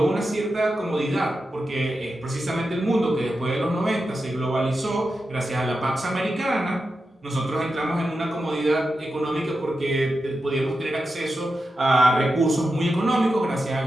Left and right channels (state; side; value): normal; both; correlation 0.90